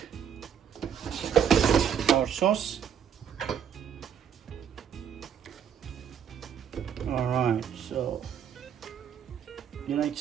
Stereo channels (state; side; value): quieter; left; 8.3 dB